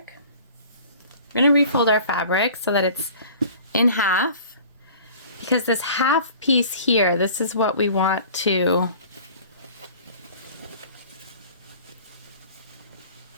We're gonna refold our fabric so that it's in half, because this half piece here, this is what we want to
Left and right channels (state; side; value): inverted; both; correlation -0.46